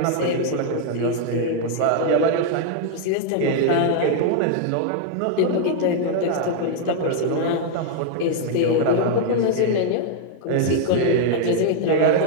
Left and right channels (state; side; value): different; both; correlation 0.00